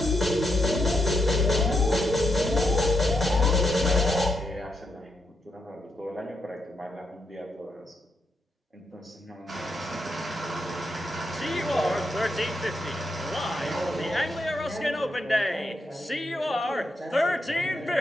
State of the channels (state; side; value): normal; both; correlation 0.82